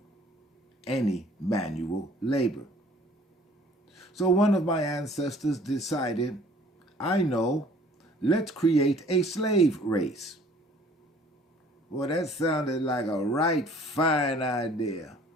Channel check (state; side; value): normal; both; correlation 0.54